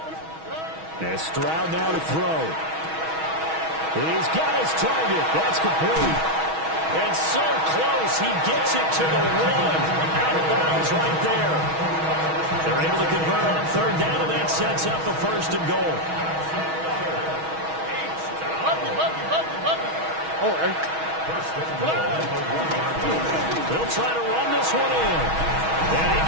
And Stroud now to throw. He's got his target. That's complete. And so close, he gets it to the 1. Out of bounds right there. They're able to convert on 3rd down, and that sets up a 1st and goal. They'll try to run this one in. And he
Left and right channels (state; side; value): late; left; 6.3 ms